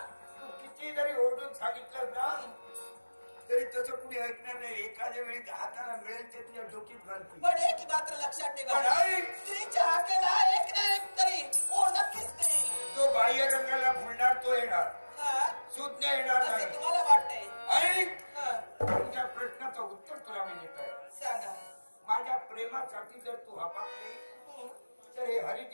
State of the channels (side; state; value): both; inverted; correlation -1.00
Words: तू किती जरी ओरडून सांगितलं ना तरी तसं कुणी ऐकणार नाही. एखाद्या वेळी हाताला मिळेल ते तुझ्या डोकीत घालतील. पण एक मात्र लक्षात ठेवा, स्त्रीच्या हाकेला एक ना एक तरी हो नक्कीच नाही. तो बाह्य रंगाला फुलणार तो येणार, सुज्ञ येणार नाही. तुम्हाला वाटतंय? ऐक, तुझ्या प्रश्नाचं उत्तर तुला मी देत आहे. सांगा. माझ्या प्रेमासाठी जर तू हपाकली तर हे